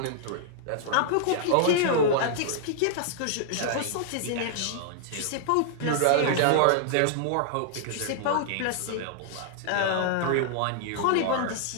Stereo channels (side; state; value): both; different; correlation -0.01